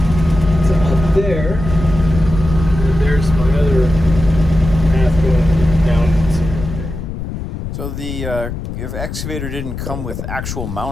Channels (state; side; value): noise; left; rumble, 6 dB below the sound